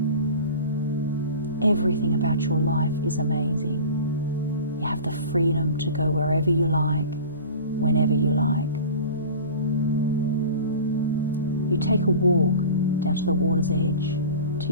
Everything about your life is amazing. You have the freedom to go wherever you like, whenever you like. You take a walk down to the water's edge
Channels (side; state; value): both; inverted; correlation -0.36